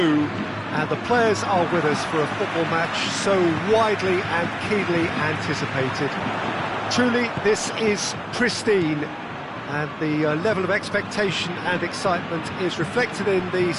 and the players are with us for a football match so widely and keenly anticipated. Truly, this is pristine, and the level of expectation and excitement is reflected in the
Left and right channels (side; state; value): both; identical; correlation 1.00